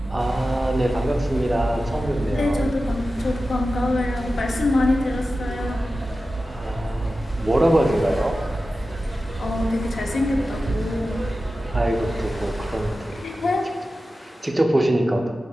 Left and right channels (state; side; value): normal; both; correlation 0.94